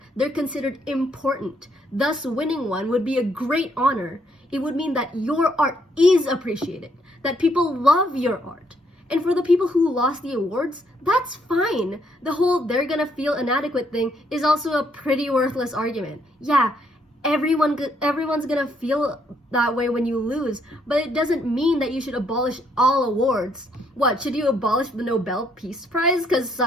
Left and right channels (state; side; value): normal; both; correlation 0.71